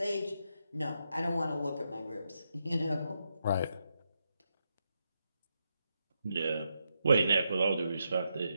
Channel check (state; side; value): inverted; both; correlation -0.84